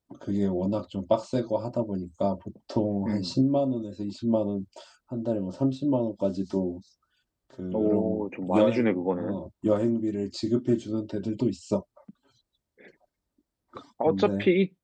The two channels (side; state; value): both; identical; correlation 1.00